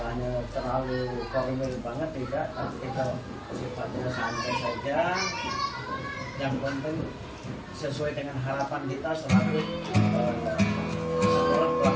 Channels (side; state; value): both; identical; correlation 1.00